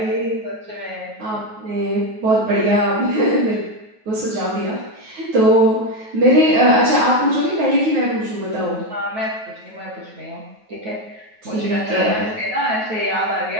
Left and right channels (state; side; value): late; left; 9.3 ms